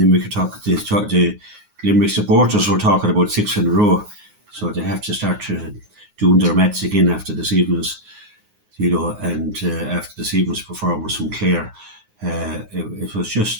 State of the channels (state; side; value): late; left; 9.6 ms